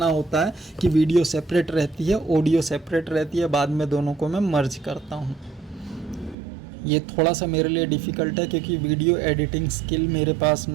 होता है कि वीडियो सेपरेट रहती है, ऑडियो सेपरेट रहती है, बाद में दोनों को मैं मर्ज करता हूँ। ये थोड़ा सा मेरे लिए डिफ़िकल्ट है, क्योंकि वीडियो एडिटिंग स्किल मेरे पास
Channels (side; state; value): left; drops out; at 6.4 s